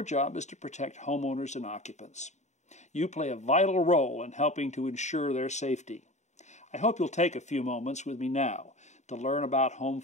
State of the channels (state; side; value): late; right; 0.34 ms